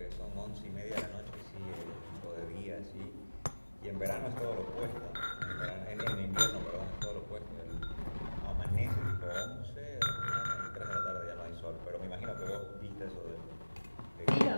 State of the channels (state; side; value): inverted; both; correlation -1.00